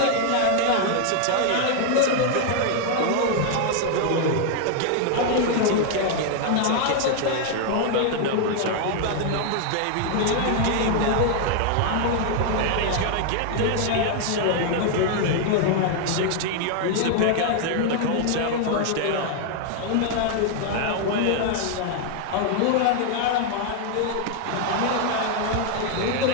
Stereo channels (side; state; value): both; different; correlation 0.00